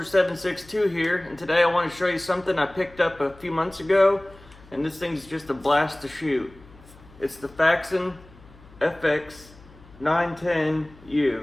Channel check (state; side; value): noise; left; hum, 23 dB below the sound